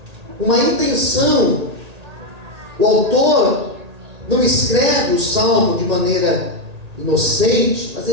uma intenção. O autor não escreve o salmo de maneira inocente, mas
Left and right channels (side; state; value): left; late; 1.8 ms